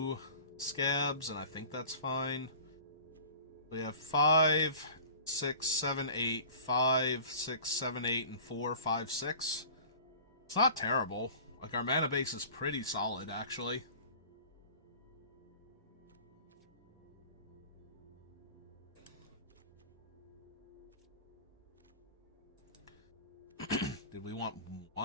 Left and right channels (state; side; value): inverted; both; correlation -0.41